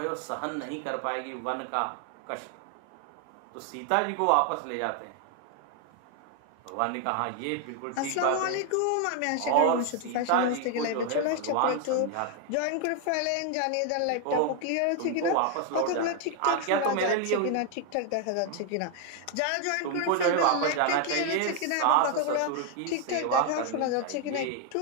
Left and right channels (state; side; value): different; both; correlation 0.00